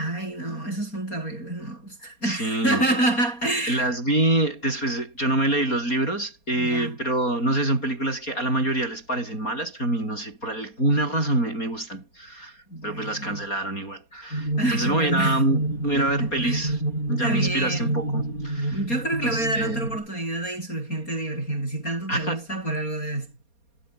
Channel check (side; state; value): right; late; 4.3 ms